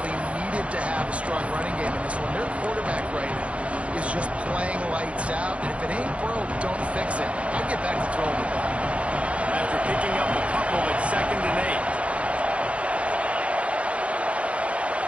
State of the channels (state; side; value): late; left; 0.062 ms